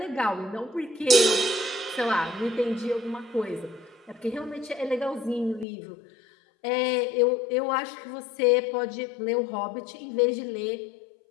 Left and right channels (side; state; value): right; drops out; at 5.7 s